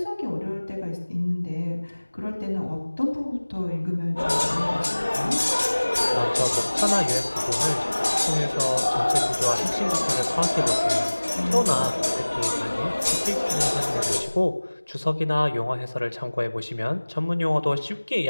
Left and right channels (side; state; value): both; inverted; correlation -1.00